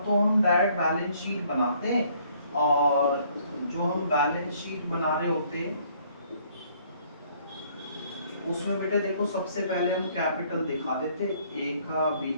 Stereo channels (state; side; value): inverted; both; correlation -0.63